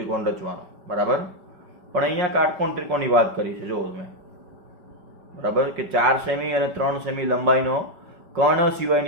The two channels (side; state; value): left; late; 5.1 ms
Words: રચવાનો. બરાબર, પણ અહીંયા કાટકોણ ત્રિકોણની વાત કરી છે. જો તમે બરાબર કે 4 સેમી અને 3 સેમી લંબાઈનો કર્ણ